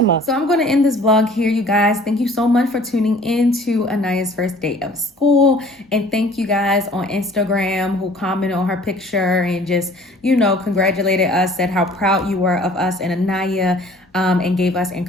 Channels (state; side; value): normal; both; correlation 0.51